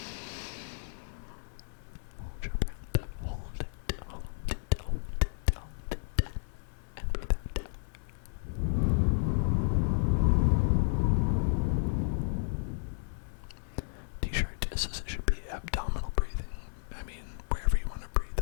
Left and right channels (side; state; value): right; silent; 56 dB below the other